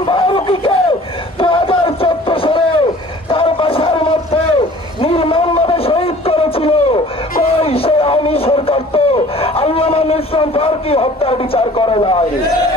ফারুকীকে 2014 সালে তার বাসার মধ্যে নির্মমভাবে শহীদ করেছিল কই সে আওয়ামী সরকার তো আল্লামা ইসলাম ফারুকী হত্যার বিচার করে নাই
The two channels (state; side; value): normal; both; correlation 0.49